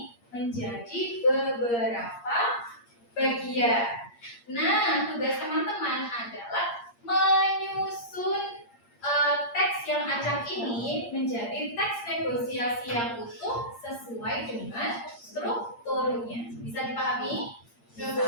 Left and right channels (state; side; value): late; right; 8.6 ms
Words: menjadi beberapa bagian. Nah, tugas teman-teman adalah menyusun teks yang acak ini menjadi teks negosiasi yang utuh sesuai dengan strukturnya. Bisa dipahami?